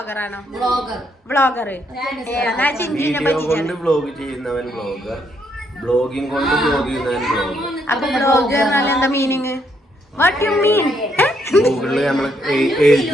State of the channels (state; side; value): normal; both; correlation 0.74